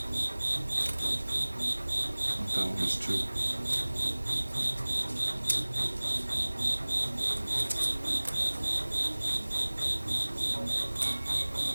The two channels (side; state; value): both; inverted; correlation -1.00